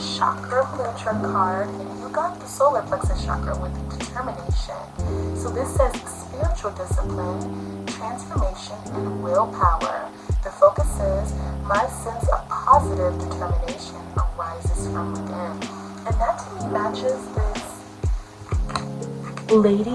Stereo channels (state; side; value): identical; both; correlation 1.00